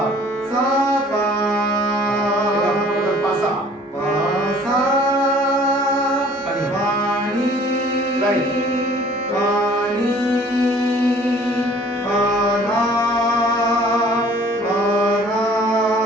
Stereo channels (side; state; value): both; normal; correlation 0.53